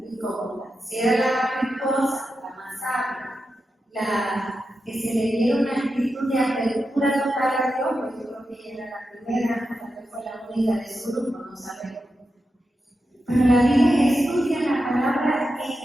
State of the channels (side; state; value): both; normal; correlation 0.89